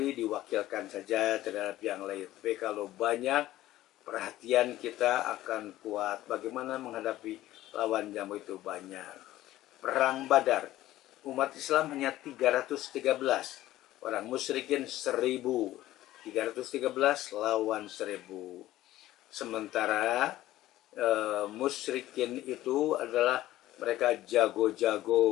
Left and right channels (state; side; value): quieter; right; 15.1 dB